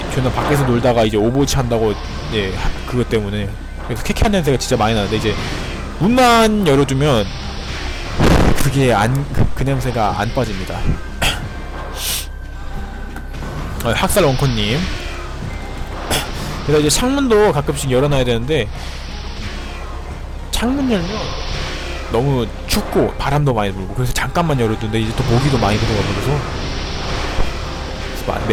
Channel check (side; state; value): both; identical; correlation 1.00